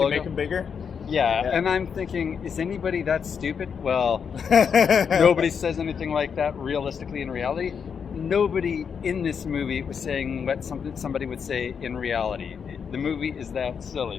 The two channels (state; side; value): quieter; right; 6.7 dB